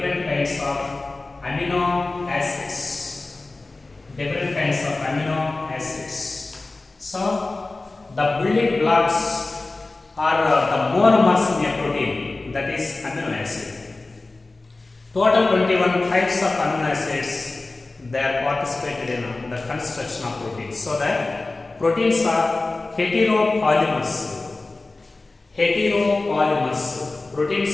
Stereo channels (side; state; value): right; quieter; 3.3 dB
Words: kinds of amino acids. Different kinds of amino acids. So, the building blocks are the monomers in a protein, that is amino acid. Total 21 types of amino acids, they are participated in the construction of proteins. So that proteins are heteropolymers. Heteropolymers.